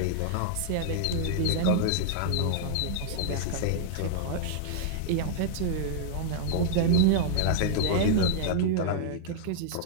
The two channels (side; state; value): both; different; correlation -0.01